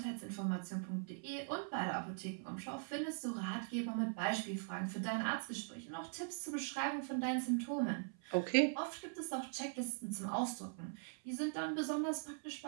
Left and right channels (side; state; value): left; silent; 50 dB below the other